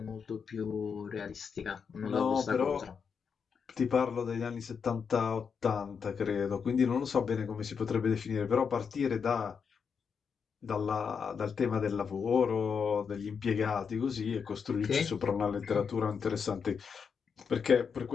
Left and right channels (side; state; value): right; quieter; 6.3 dB